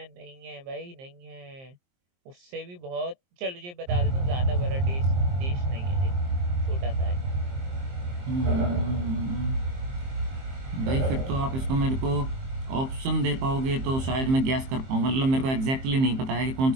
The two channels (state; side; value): late; left; 23 ms